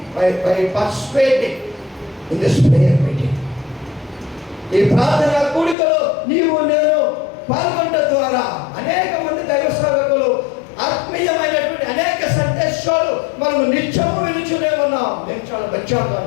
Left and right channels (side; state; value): right; drops out; at 5.8 s